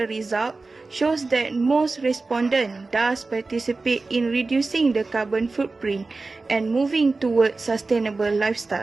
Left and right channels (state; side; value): quieter; left; 3.7 dB